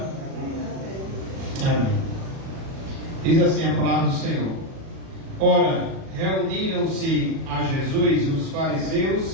Amém. Diz assim a palavra do Senhor: Ora, reuniram-se a Jesus os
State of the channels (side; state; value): left; late; 37 ms